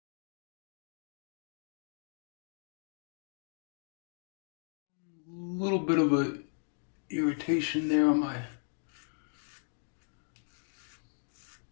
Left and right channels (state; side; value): silent; right; digital silence